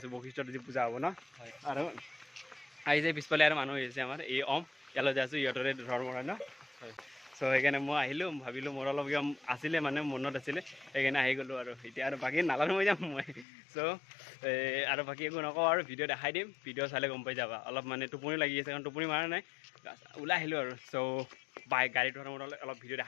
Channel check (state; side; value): drops out; right; at 13.5 s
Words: বশিষ্ঠত আজি পূজা হ'ব না আৰু আই যে পিছফালে আৰু মানুহ হৈছে আমাৰ এই ইয়ালৈ যাই আছো ইহঁতৰে ধৰ্ম হয় না so সেইকাৰণে মই আহিলো ভাবিলো মোৰ অলপ আছিলে মানে মনত আছিলে সেইকাৰণে আহি গ'লো আৰু এতিয়া আৰু বাকী নালানো মই যাম মই so আৰু বাকী একো নকওঁ আৰু ভিডিঅ' দেখাই দিম ভিডিঅ' চালে গম পাই যাবা অলপ মানে টোপনি লাগি আছে কাৰণ টোপনি মাৰা নাই ওলাই আহিলো আৰু so গাড়ীত অলপ ভিডিঅ'